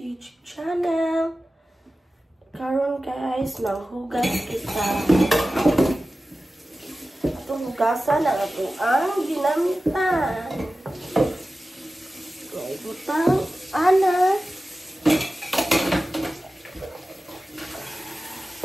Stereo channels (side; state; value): both; normal; correlation 0.95